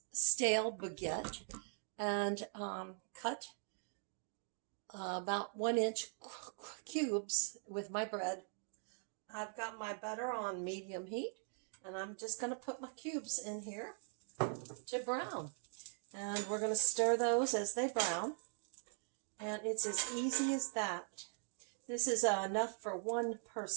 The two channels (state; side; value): silent; left; 50 dB below the other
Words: baguette and cut about 1-inch cubes with my bread. I've got my butter on medium heat, and I'm just going to put my cubes in here to brown. And we're going to stir those as they brown. And it's as easy as that. This is enough for one